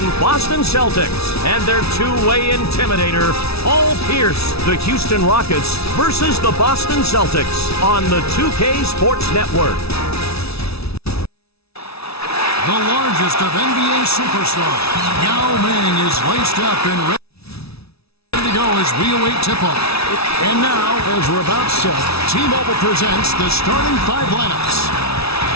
Boston Celtics and their two-way intimidator, Paul Pierce. The Houston Rockets versus the Boston Celtics on the 2K Sports Network. The largest of NBA superstars, Yao Ming is laced up and ready to go as we await tip-off. And now, as we're about set, T-Mobile presents the starting five lineups.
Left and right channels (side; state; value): right; late; 0.78 ms